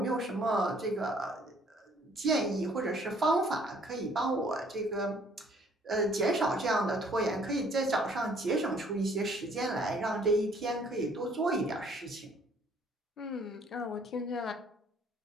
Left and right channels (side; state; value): both; normal; correlation 0.60